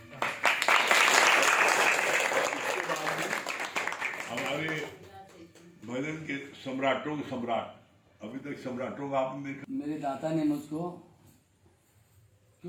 हमारे भजन के सम्राटों के सम्राट, अभी तक सम्राटों का आपने देखा। मेरे दाता ने मुझको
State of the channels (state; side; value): identical; both; correlation 1.00